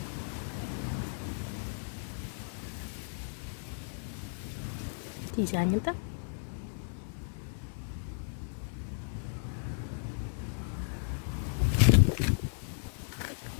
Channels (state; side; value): silent; right; digital silence